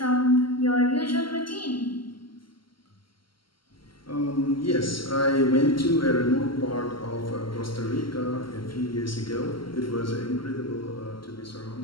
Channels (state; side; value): late; right; 0.73 ms